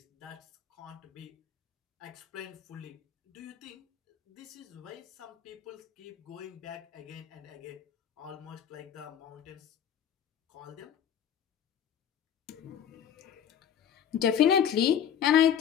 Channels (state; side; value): quieter; right; 9.1 dB